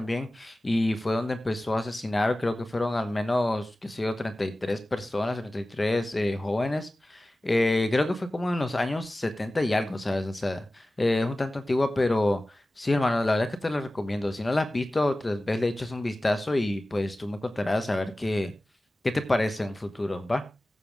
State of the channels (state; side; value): normal; both; correlation 0.96